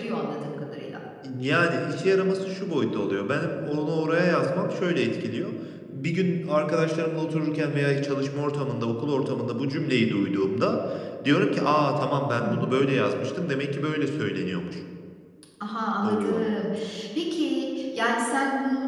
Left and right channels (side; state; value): both; identical; correlation 1.00